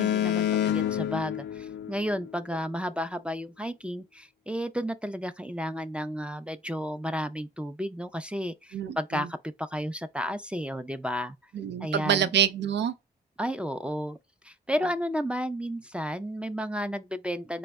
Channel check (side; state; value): both; normal; correlation 0.51